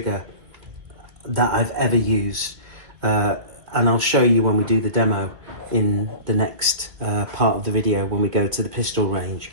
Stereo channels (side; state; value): left; late; 2.2 ms